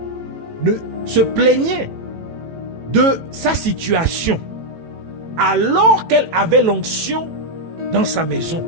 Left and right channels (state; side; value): late; left; 18 ms